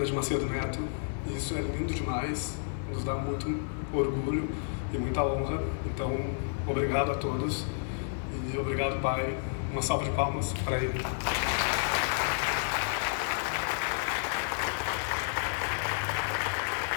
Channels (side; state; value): right; silent; digital silence